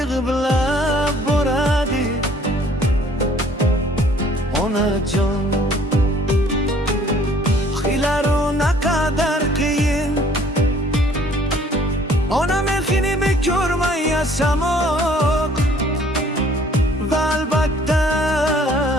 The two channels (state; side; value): normal; both; correlation 0.57